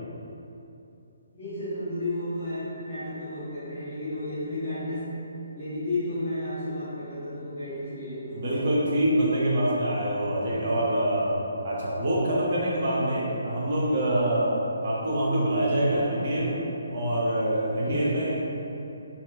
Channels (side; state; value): both; inverted; correlation -0.74